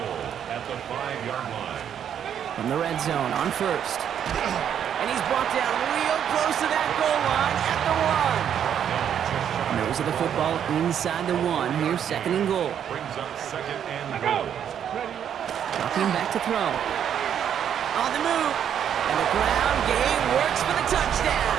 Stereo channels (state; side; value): quieter; left; 9.0 dB